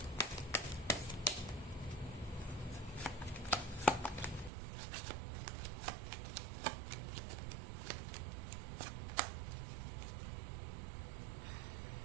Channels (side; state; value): left; drops out; at 4.5 s